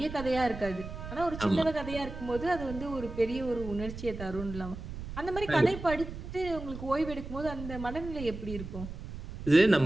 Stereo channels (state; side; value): noise; right; rumble, 10 dB below the sound